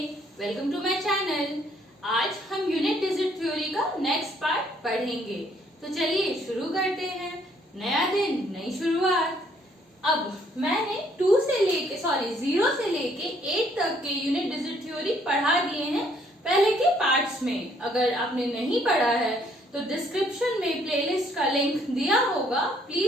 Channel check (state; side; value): normal; both; correlation 0.66